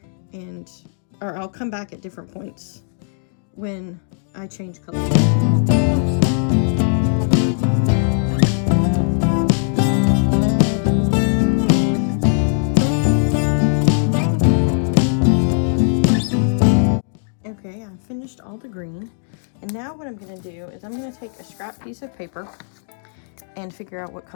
or I'll come back at different points when I change colors. Okay, I've finished all the green, and now what I'm going to do is I'm going to take a scrap piece of paper and figure out what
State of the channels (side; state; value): right; silent; 64 dB below the other